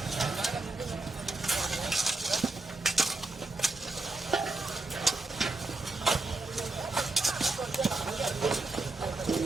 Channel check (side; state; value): left; quieter; 3.1 dB